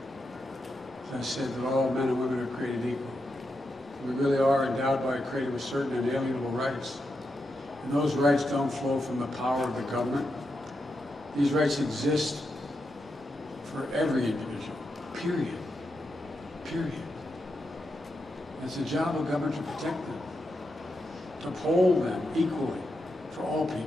As I said, that all men and women are created equal. We really are endowed by a creator with certain inalienable rights. And those rights don't flow from the power of the government. These rights exist for every individual, period. Period. It's the job of government to protect them, to uphold them equally for all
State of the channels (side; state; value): both; normal; correlation 0.85